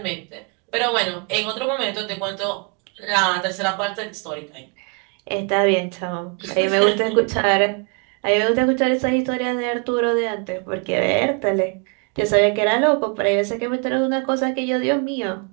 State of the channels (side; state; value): left; quieter; 34.5 dB